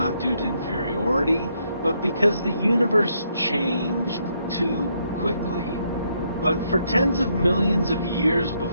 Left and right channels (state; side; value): inverted; both; correlation -0.74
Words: due to inferiority, but because the universe changed too quickly. But for tens of millions of years